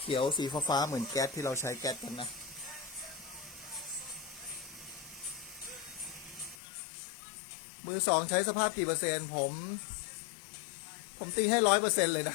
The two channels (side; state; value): right; drops out; at 6.6 s